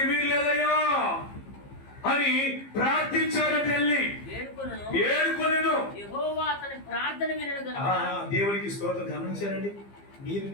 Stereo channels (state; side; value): late; right; 15 ms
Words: వీల్లేదయ్యా అని ప్రార్థించారని వెళ్ళి ఏడుకొనెను. దేవునికి స్తోత్రం. గమనించారండి మీరు